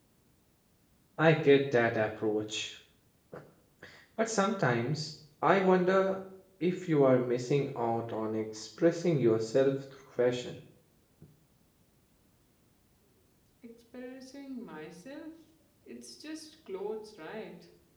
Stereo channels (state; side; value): identical; both; correlation 1.00